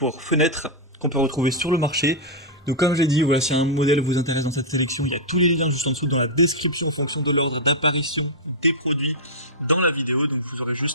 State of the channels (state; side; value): normal; both; correlation -0.07